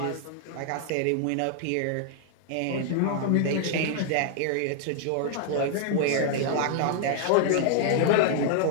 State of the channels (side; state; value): both; different; correlation 0.00